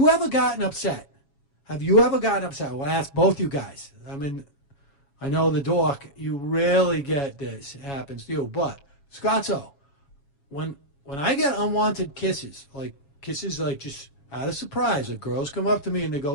ever gotten upset? Have you ever gotten upset? Well, I ask both you guys. I mean, I know the dork, you rarely get this. It happens to you. But, Scotto, when I get unwanted kisses like just out of surprise, the girls come up to me and they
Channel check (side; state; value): right; late; 7.2 ms